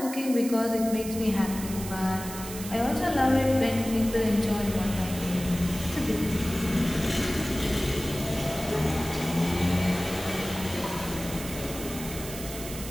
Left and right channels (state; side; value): noise; right; hiss, 11 dB below the sound